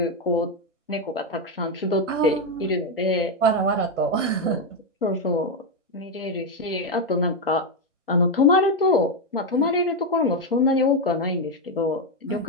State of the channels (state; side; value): normal; both; correlation 0.06